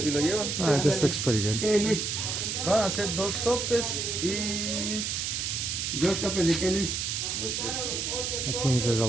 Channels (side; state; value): right; noise; hiss, 2 dB below the sound